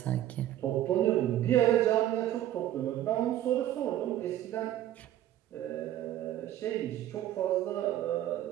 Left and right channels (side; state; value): left; quieter; 12.6 dB